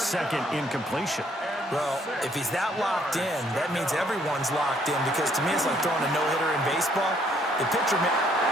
second incompletion. Well, if he's that locked in, that means everyone's locked in, because to me it's like throwing a no-hitter in baseball. The pitcher...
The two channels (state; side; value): normal; both; correlation 0.67